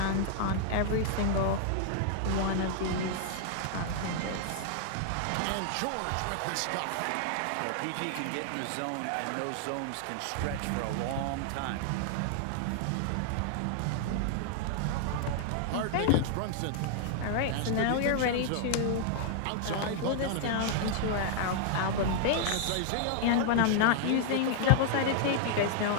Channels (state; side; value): different; both; correlation 0.00